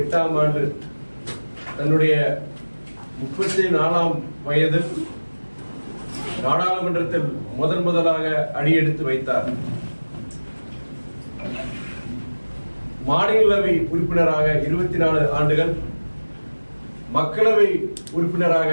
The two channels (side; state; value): both; inverted; correlation -1.00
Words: ஆண்டு தன்னுடைய 34ஆம் வயதில் நாடாளுமன்றத்தில் முதலாக அடியெடுத்து வைத்தார். மாநிலங்களவை உறுப்பினராக 24 ஆண்டுகள், மக்களவை உறுப்பினராக